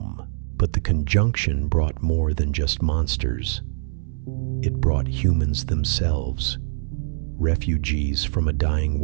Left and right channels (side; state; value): left; silent; digital silence